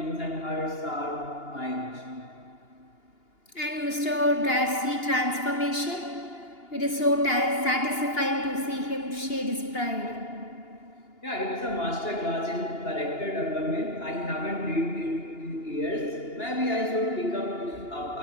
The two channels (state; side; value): late; right; 2.8 ms